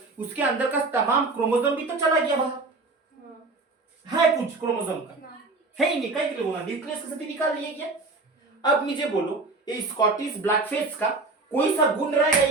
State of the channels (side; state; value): left; quieter; 3.5 dB